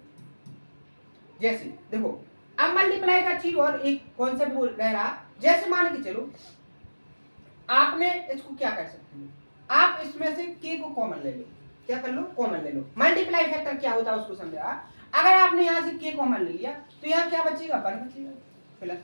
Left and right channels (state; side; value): inverted; both; correlation -1.00